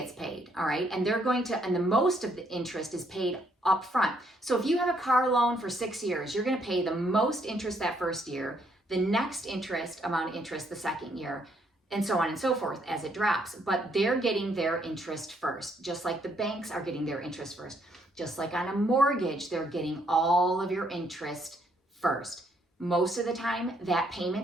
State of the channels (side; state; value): both; normal; correlation 0.71